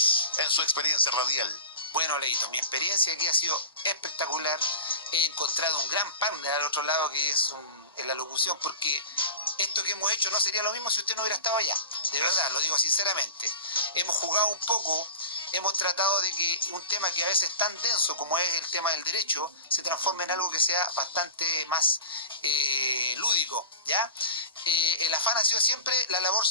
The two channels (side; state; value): both; inverted; correlation -0.35